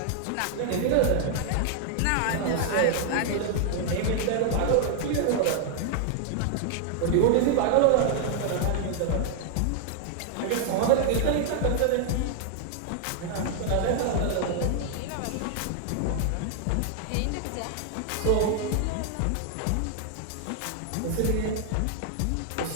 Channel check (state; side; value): different; both; correlation 0.00